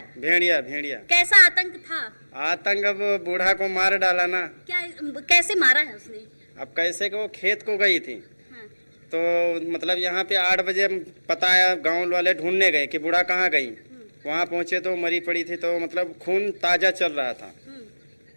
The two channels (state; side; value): inverted; both; correlation -1.00